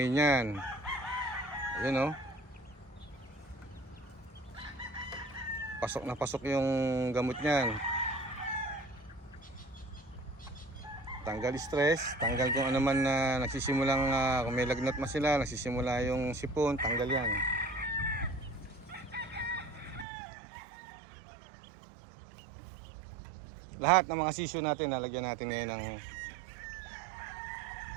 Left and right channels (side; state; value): left; drops out; at 20.1 s